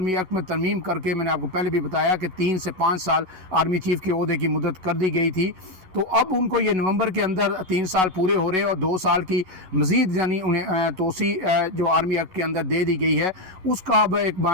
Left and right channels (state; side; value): late; left; 11 ms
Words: एक्ट में तरमीम करके मैंने आपको पहले भी बताया कि 3 से 5 साल आर्मी चीफ के ओहदे की मुद्दत कर दी गई थी, तो अब उनको ये नवंबर के अंदर 3 साल पूरे हो रहे हैं और 2 साल की मज़ीद यानी उन्हें तोसी जो आर्मी एक्ट के अंदर दे दी गई है उसका अब एक